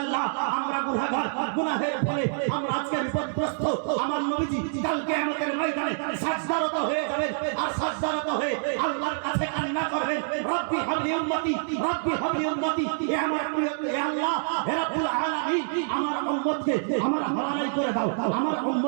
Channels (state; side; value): silent; left; 60 dB below the other